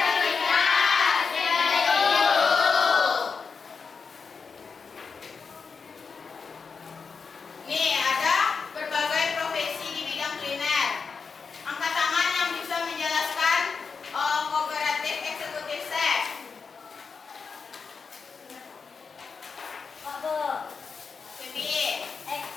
nih ada berbagai profesi di bidang kuliner. Angkat tangan yang bisa menjelaskan kooperatif eksekutif chef. Febi,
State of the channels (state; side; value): quieter; right; 5.3 dB